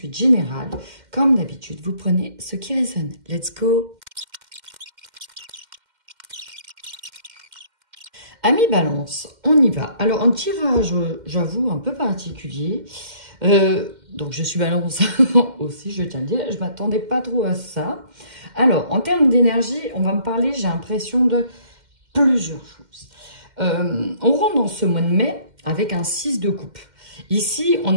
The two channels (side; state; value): left; late; 2.1 ms